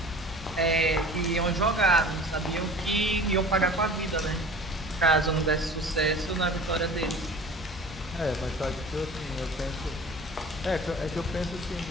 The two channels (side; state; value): both; normal; correlation 0.41